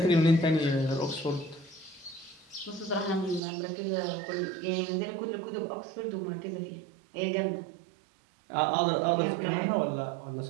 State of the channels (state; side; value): drops out; left; at 3.4 s